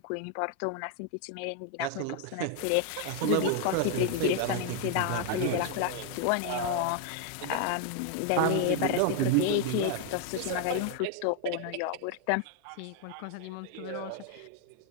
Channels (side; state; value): both; different; correlation 0.00